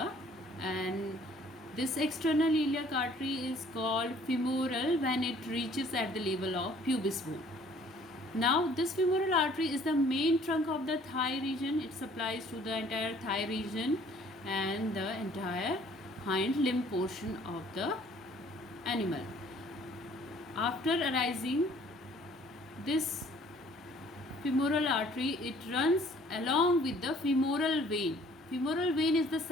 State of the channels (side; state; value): both; normal; correlation 0.57